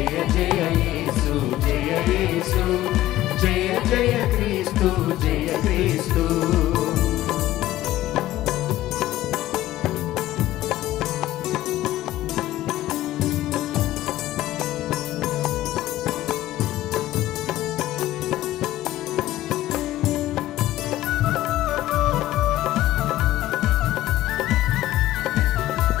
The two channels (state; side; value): quieter; right; 14.9 dB